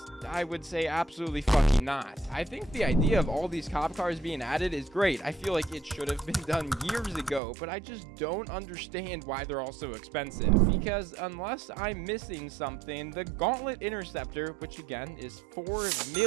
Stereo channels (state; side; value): drops out; left; at 7.4 s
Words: I would say absolutely fucking not. I think the idea of all these cop cars being added is great. I feel like it should have been done years ago, but I just don't understand why they're all so expensive. Because unless I'm missing something, the Gauntlet Interceptor, which again is $4